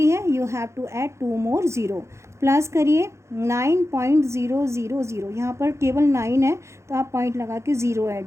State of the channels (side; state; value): left; late; 0.14 ms